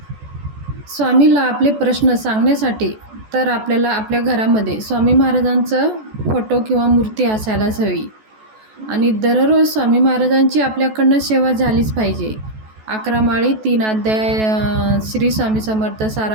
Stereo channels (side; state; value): left; late; 14 ms